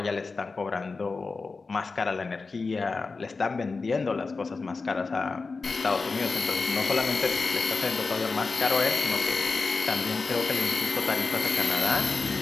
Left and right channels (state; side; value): quieter; right; 4.2 dB